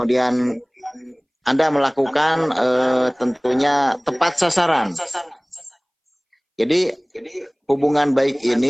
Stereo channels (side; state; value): both; identical; correlation 1.00